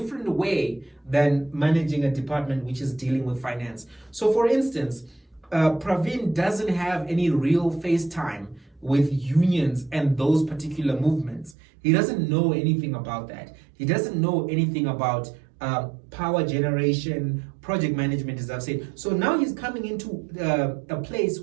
way than managing a department which is dealing with finance. So, for instance, Pravin doesn't have any real face time with unions and those particular movements. He doesn't know anything about that. He doesn't know anything about power generation, project management, as I've said. So now he's coming into a place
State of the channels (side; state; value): left; drops out; at 11.6 s